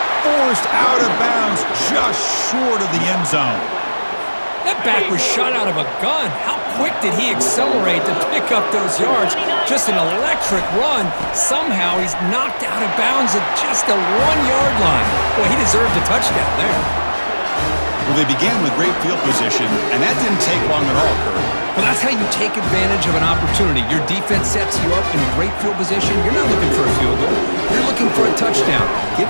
Forced out of bounds just short of the end zone. That back was shot out of a gun. How quick did he accelerate to pick up those yards? Just an electric run. Somehow he's knocked out of bounds at just the 1-yard line. Boy, he deserved a touchdown there. Well, they began with great field position, and that didn't take long at all, Kurt. Well, that's how you take advantage of an opportunity. Your defense sets you up in great field position. You're not looking for a field goal. You're looking for a touchdown. Give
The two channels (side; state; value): both; inverted; correlation -1.00